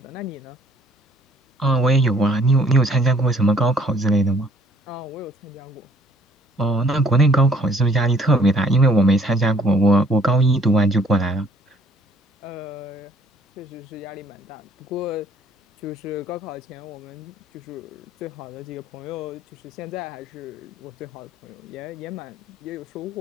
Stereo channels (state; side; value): normal; both; correlation 0.60